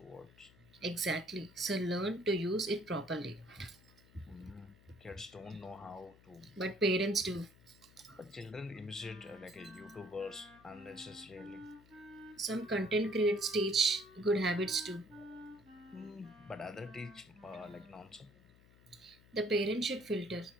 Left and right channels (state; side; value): noise; left; hum, 25 dB below the sound